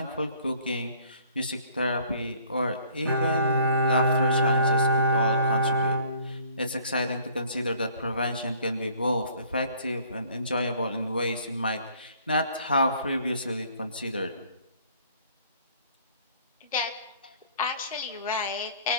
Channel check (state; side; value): inverted; both; correlation -0.56